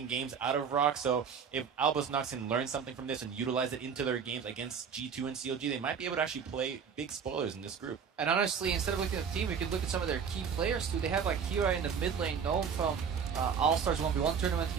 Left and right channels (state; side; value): quieter; left; 6.7 dB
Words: games out of ROX. So if Albus Nox can learn something from this and utilize it into their games against G2 and CLG, they might be able to actually play big spoilers in this group. And honestly, instead of looking at the team, we could look at some of their key players too. They have like Kira in the mid lane, known from All-Stars 1v1 tournament.